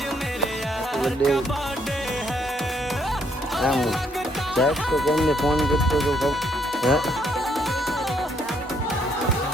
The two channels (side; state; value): both; normal; correlation 0.71